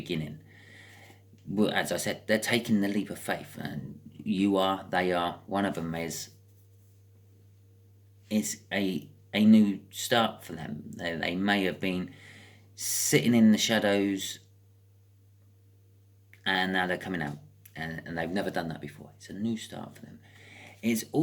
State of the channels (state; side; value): identical; both; correlation 1.00